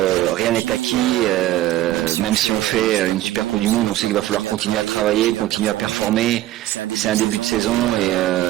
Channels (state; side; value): quieter; left; 14.6 dB